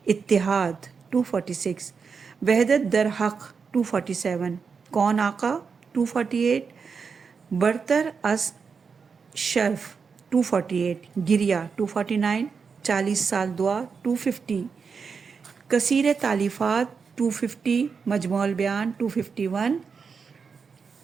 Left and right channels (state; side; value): quieter; left; 5.6 dB